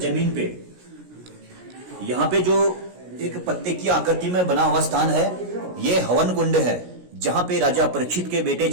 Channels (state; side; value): late; left; 17 ms